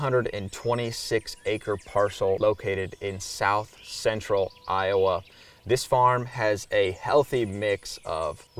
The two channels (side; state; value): both; identical; correlation 1.00